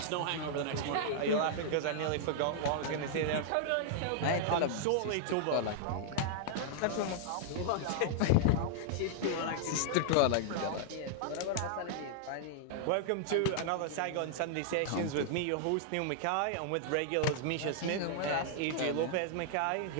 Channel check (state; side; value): different; both; correlation -0.01